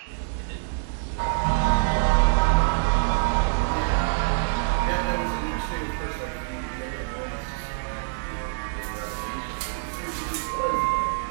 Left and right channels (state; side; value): silent; left; 61 dB below the other